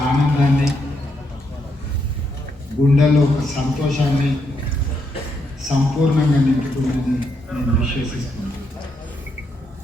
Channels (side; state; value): both; normal; correlation 0.78